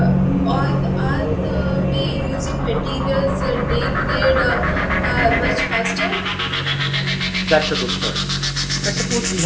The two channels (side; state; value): both; identical; correlation 1.00